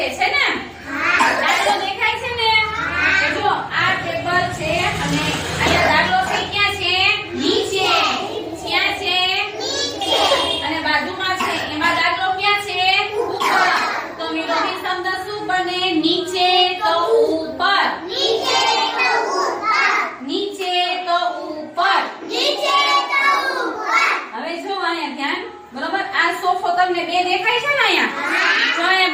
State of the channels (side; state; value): both; identical; correlation 1.00